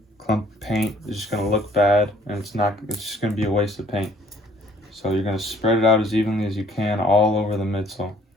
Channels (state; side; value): normal; both; correlation 0.59